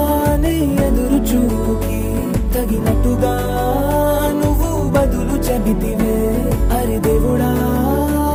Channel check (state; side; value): identical; both; correlation 1.00